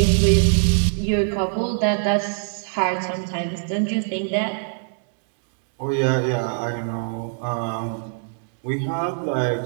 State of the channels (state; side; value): silent; left; digital silence